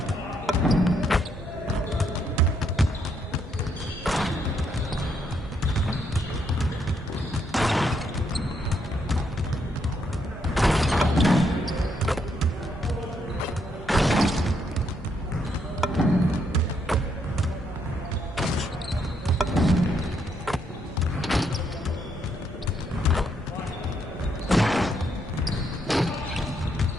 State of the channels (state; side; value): normal; both; correlation 0.75